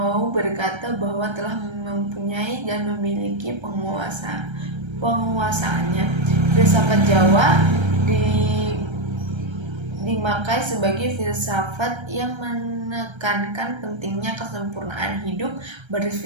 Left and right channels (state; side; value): late; left; 1.3 ms